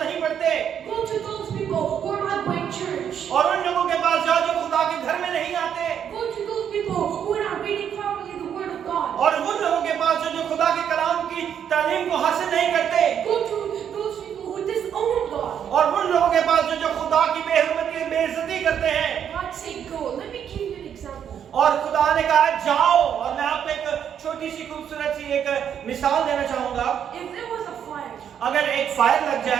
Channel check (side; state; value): left; quieter; 8.7 dB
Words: नहीं पढ़ते, Go to those people who are not going to church. और उन लोगों के पास जाओ जो खुदा के घर में नहीं आते, Go to those people who are not reading properly the Word of God. और उन लोगों के पास जो खुदा के कलाम की तालीम को हासिल नहीं करते, Go to those people who disown God. और उन लोगों के पास जो खुदा की बेहरमती बेइज्जती करते हैं। God said, go. Let me give you an example. और खुदा ने कहा जाओ, और मैं आपको एक छोटी सी खूबसूरत सी एक मिसाल देना चाहूंगा। If there was a fire अगर एक फायर लग